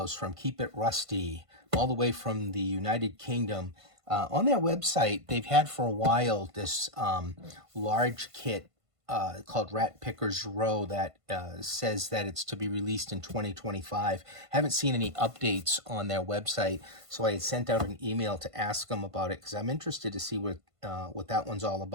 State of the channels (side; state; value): left; late; 1.5 ms